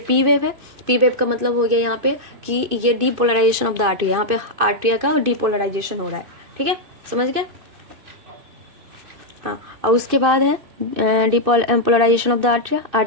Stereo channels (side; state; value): left; late; 2.5 ms